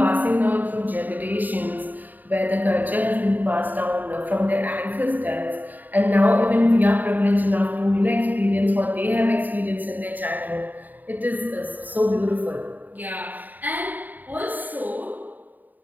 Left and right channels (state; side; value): late; left; 0.086 ms